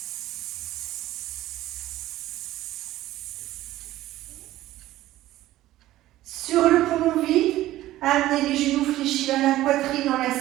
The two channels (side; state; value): left; quieter; 15.2 dB